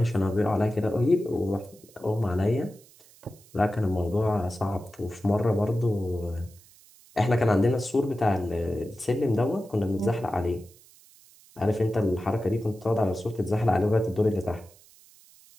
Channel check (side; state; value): right; noise; hiss, 26 dB below the sound